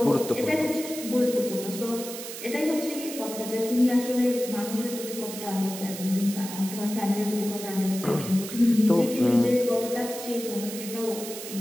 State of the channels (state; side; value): noise; right; hiss, 10 dB below the sound